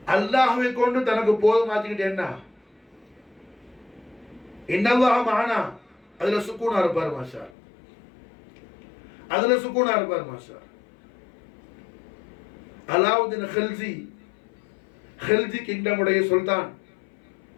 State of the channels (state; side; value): drops out; right; at 7.5 s